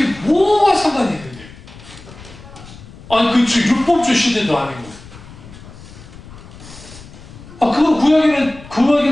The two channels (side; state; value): left; noise; rumble, 18 dB below the sound